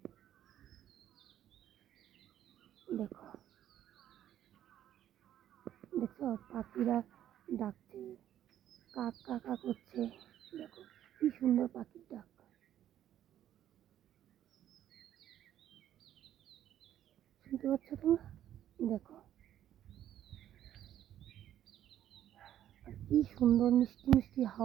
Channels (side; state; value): left; quieter; 11.3 dB